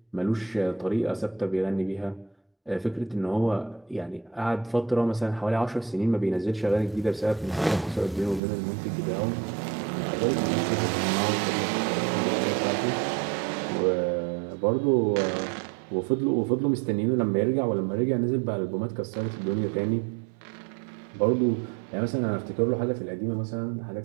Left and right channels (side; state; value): left; drops out; at 8.4 s